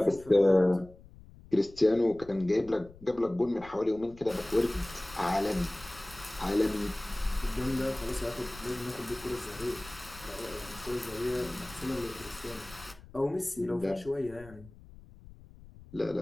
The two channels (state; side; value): noise; left; rumble, 20 dB below the sound